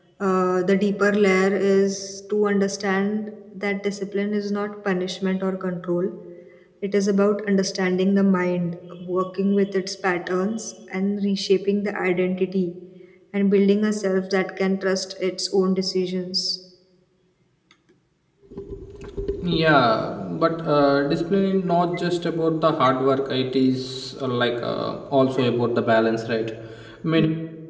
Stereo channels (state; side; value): identical; both; correlation 1.00